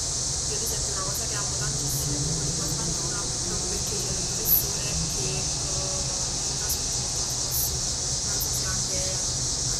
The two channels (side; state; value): both; identical; correlation 1.00